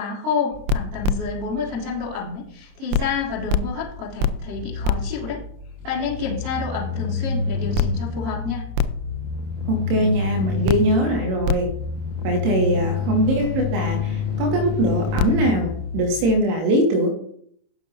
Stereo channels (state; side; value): late; left; 26 ms